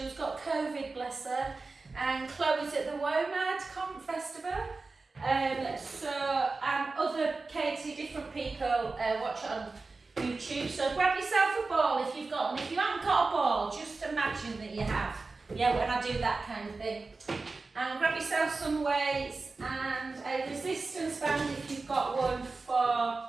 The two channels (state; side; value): quieter; left; 3.8 dB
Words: who's got COVID, bless her. And Chloe's at the WOMAD Festival. And other Katie, different people watch it on YouTube. So grab yourself a ball if you've got one. If you haven't got a ball, just imagine that you have. Yeah, when I do that kind of thing. And grab yourself some weights and a resistance band if you've got one for